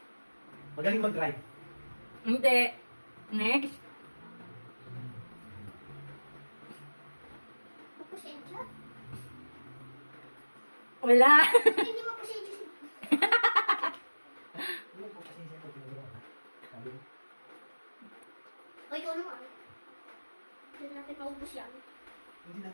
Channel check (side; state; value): both; inverted; correlation -1.00